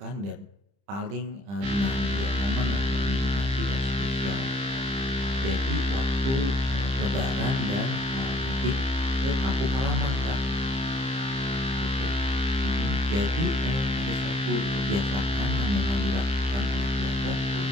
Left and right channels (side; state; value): left; late; 30 ms